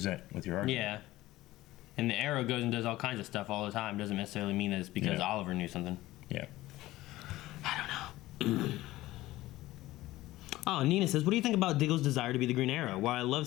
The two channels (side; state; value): right; quieter; 17.0 dB